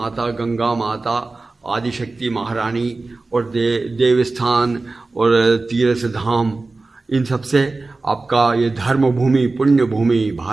गंगा माता आदिशक्ति महारानी और देवस्थान और तीर्थ धाम इन सब से आपका ये धर्म भूमि पुण्य भूमि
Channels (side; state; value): left; quieter; 3.5 dB